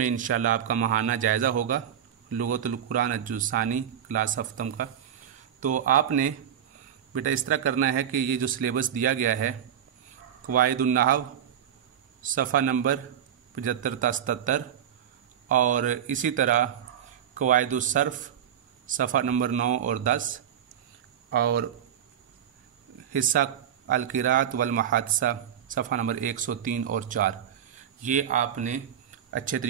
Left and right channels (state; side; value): quieter; left; 9.5 dB